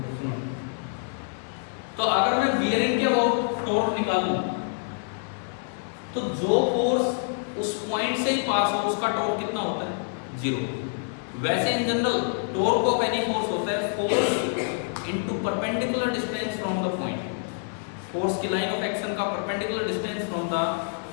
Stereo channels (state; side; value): silent; right; 60 dB below the other